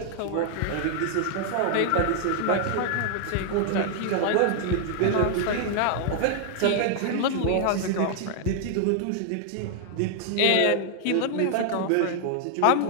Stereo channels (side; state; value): both; different; correlation 0.00